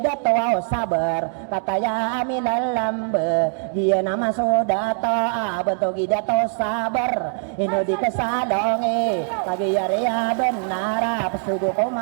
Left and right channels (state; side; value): silent; left; 63 dB below the other